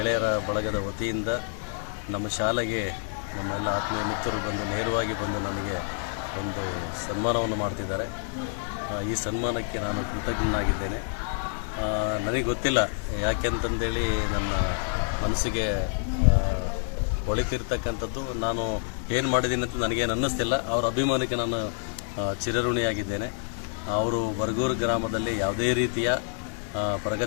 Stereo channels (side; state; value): right; silent; digital silence